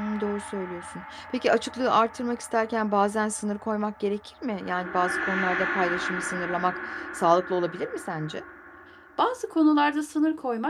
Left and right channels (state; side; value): identical; both; correlation 1.00